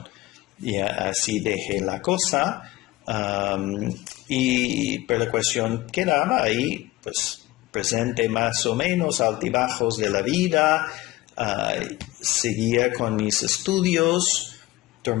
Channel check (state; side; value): quieter; right; 18.4 dB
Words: Y así dejé la cosa pero la cuestión quedaba ahí, pues presente más o menos, altibajos de la vida, seguía con mis estudios,